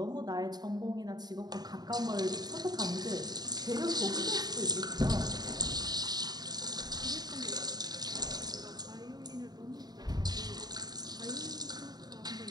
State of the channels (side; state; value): left; late; 0.20 ms